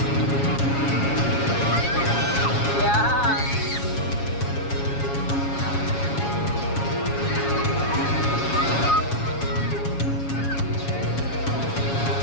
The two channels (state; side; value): late; right; 7.2 ms